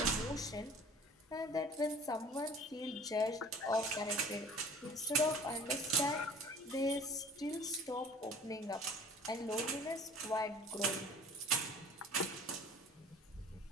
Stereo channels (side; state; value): both; normal; correlation 0.47